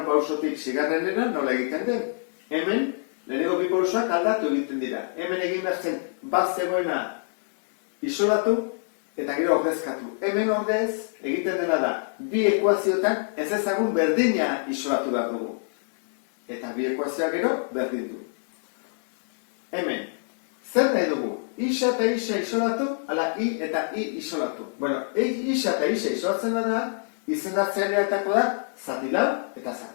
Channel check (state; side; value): silent; right; digital silence